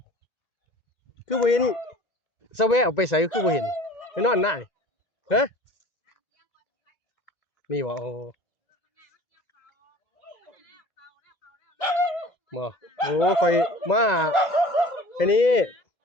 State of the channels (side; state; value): right; late; 1.9 ms